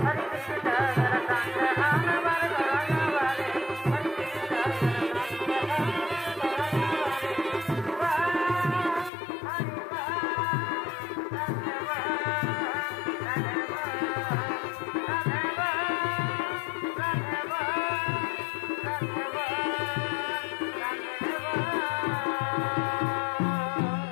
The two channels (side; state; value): right; drops out; at 9.1 s